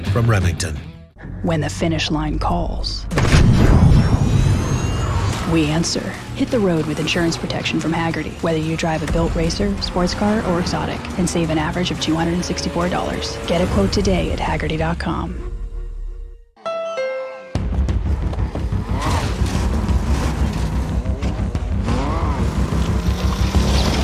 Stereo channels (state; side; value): identical; both; correlation 1.00